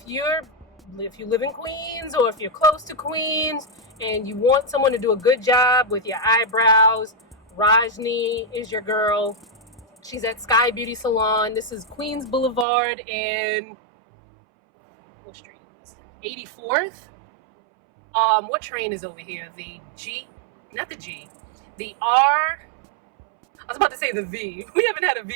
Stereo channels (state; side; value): drops out; left; at 12.7 s